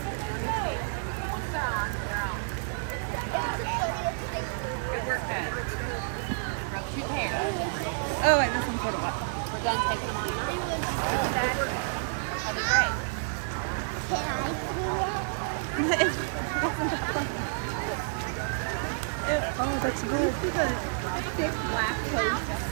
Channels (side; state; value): left; silent; digital silence